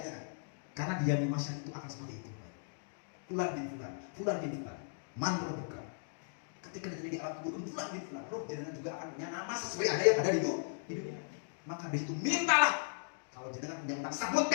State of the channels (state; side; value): silent; right; digital silence